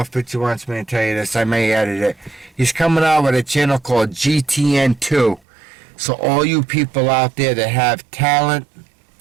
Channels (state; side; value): drops out; left; at 5.4 s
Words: if Pitcher wants me to tell you this. I may edit it. He's coming out with a channel called GTN2. So all you people out there that have talent,